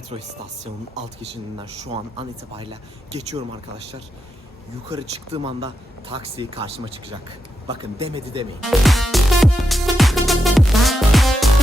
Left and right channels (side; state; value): both; normal; correlation 0.86